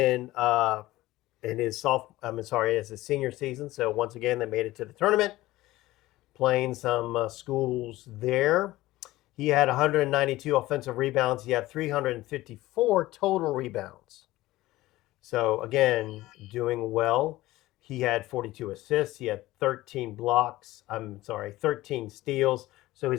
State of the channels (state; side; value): quieter; right; 17.4 dB